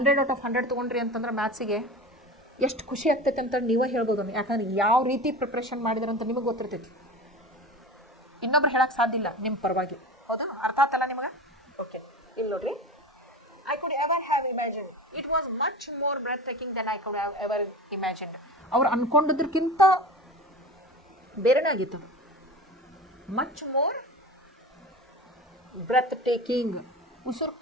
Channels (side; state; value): both; normal; correlation 0.32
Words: out of 100 ತೊಗೊಂಡ್ರಿ ಅಂತಂದ್ರೆ ಮ್ಯಾಥ್ಸಿಗೆ ಎಷ್ಟು ಖುಷಿ ಆಗ್ತೈತೆ ಅಂತ ನೀವೇ ಹೇಳ್ಬೋದು. ಯಾಕಂದ್ರೆ ಯಾವ ರೀತಿ ಪ್ರಿಪ್ರೇಷನ್ ಮಾಡಿದ್ರಂತ ನಿಮಗೆ ಗೊತ್ತಿರ್ತೈತಿ, ಇನ್ನೊಬ್ರು ಹೇಳಕ್ಕೆ ಸಾಧ್ಯ ಇಲ್ಲ ನಿಮ್ಮ ಪರವಾಗಿ. ಹೌದಾ? ಅರ್ಥ ಆತಲ್ಲ ನಿಮಗೆ? ಓಕೆ, ಇಲ್ಲಿ ನೋಡ್ರಿ, I could ever have imagined. It was much more breathtaking than I could have ever imagined. ಅವ್ರು ಅನ್ಕೊಂಡಿದ್ದಕ್ಕಿಂತ ಬೇರೆನೇ ಆಗಿತ್ತು. ಮಚ್ ಮೋರ್ ಬ್ರೆತ್ ಟೇಕಿಂಗ್, ಉಸಿರು